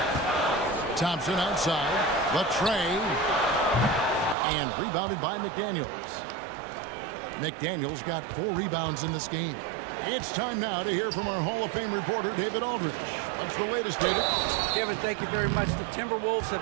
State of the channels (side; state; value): left; drops out; at 4.4 s